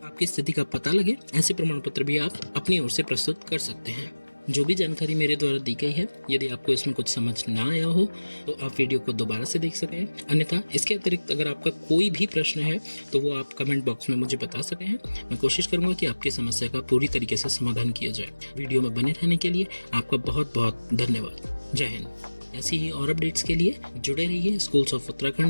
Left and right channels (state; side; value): inverted; both; correlation -1.00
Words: स्थिति का पता लगे, ऐसे प्रमाण पत्र भी आप अपनी ओर से प्रस्तुत कर सकते हैं। जो भी जानकारी मेरे द्वारा दी गई है, यदि आपको इसमें कुछ समझ ना आया हो तो आप वीडियो को दोबारा से देख सकें। अन्यथा इसके अतिरिक्त अगर आपका कोई भी प्रश्न है तो वो आप कमेंट बॉक्स में मुझे बता सकें हैं। मैं कोशिश करूंगा कि आपकी समस्या का पूरी तरीके से समाधान किया जाए। वीडियो में बने रहने के लिए आपका बहुत बहुत धन्यवाद। जय हिंद। ऐसी ही और अपडेट्स के लिए जुड़े रहिए स्कूल्स ऑफ